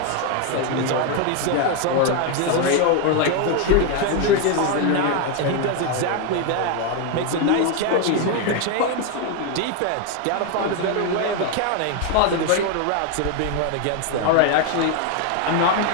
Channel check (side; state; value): both; different; correlation 0.01